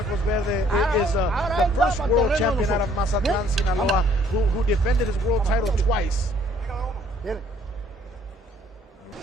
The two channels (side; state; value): both; normal; correlation 0.62